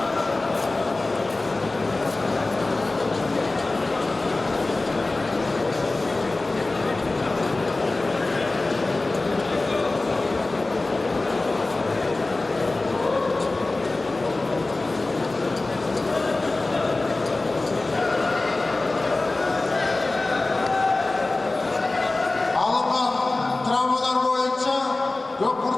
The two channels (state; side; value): quieter; right; 3.1 dB